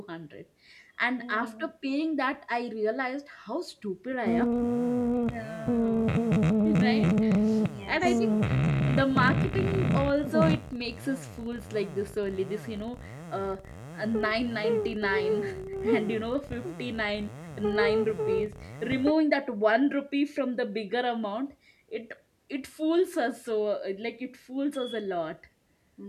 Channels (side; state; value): both; identical; correlation 1.00